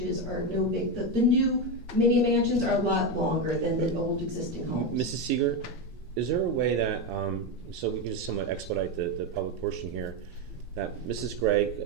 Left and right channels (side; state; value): both; normal; correlation 0.11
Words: are no big. The new mini mansions are a lot longer than the old existing homes. Mrs. Seeger, is there a way that, so we can just somewhat expedite the public portion here, that Mrs.